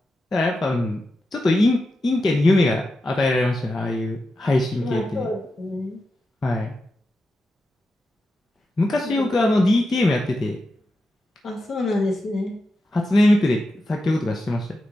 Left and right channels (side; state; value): both; normal; correlation 0.89